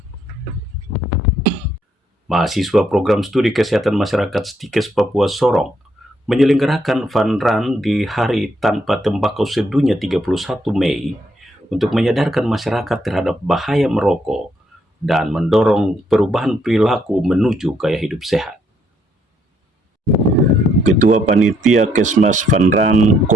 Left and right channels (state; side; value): normal; both; correlation 0.72